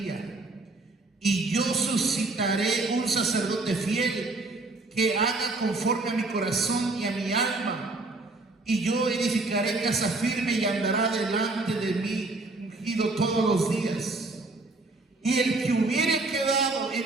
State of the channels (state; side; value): quieter; left; 3.2 dB